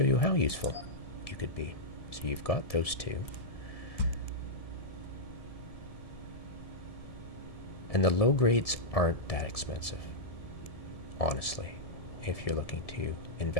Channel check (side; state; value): right; late; 1.7 ms